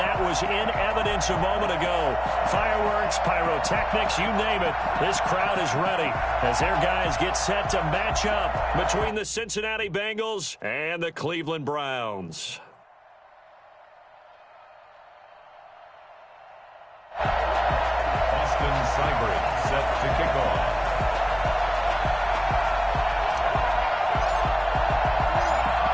was in evidence a moment ago. Fireworks, pyrotechnics, you name it. This crowd is ready as their guys get set to match up between the Cincinnati Bengals and the Cleveland Browns. Set to kick off.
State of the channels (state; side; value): identical; both; correlation 1.00